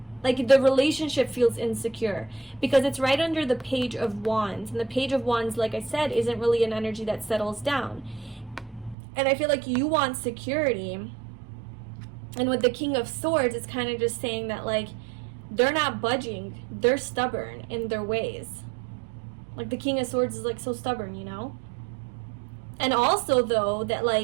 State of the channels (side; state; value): left; drops out; at 9.0 s